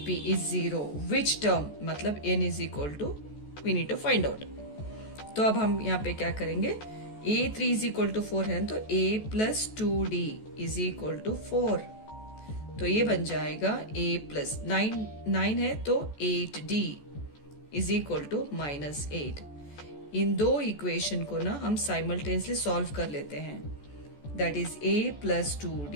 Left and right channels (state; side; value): late; right; 14 ms